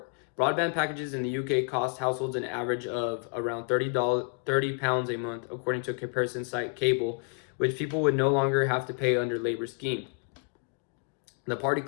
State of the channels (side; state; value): right; quieter; 39.8 dB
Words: Broadband packages in the UK cost households an average of around £30 a month, according to a comparison site Cable, which people would no longer have to pay under Labour's scheme. The party